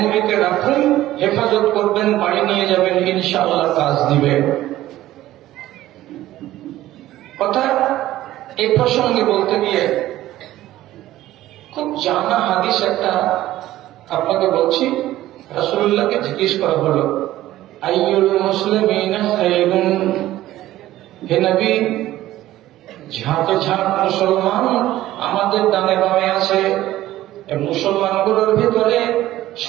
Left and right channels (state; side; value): quieter; left; 14.8 dB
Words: রাখুন, হেফাজত করবেন, বাড়ি নিয়ে যাবেন, ইনশাআল্লাহ কাজ দিবে। কথা এই প্রসঙ্গে বলতে গিয়ে খুব জানা হাদিস একটা আপনাকে বলছি। রাসূলুল্লাহকে জিজ্ঞেস করা হলো, আইয়ুল মুসলিমিনা খায়রুন, হে নবী, ঝাঁকে ঝাঁক মুসলমান আমাদের ডানে বামে আছে, মুসলমানগুলোর ভিতরে